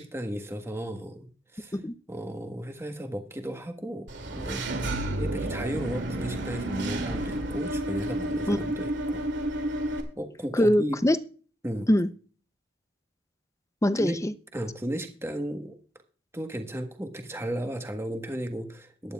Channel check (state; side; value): normal; both; correlation 0.80